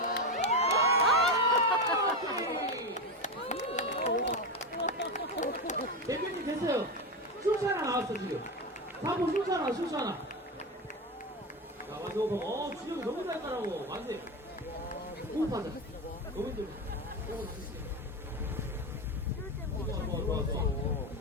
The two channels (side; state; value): both; normal; correlation 0.16